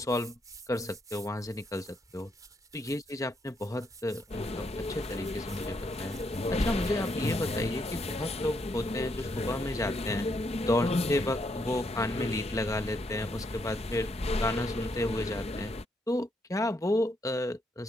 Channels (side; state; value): both; normal; correlation 0.76